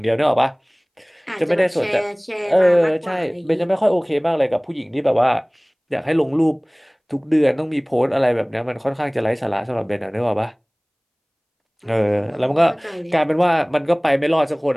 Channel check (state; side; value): identical; both; correlation 1.00